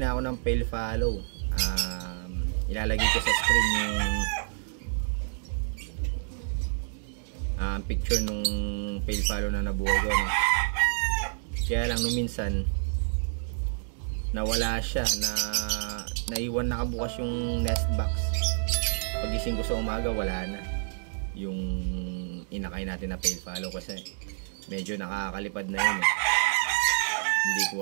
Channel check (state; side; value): silent; left; digital silence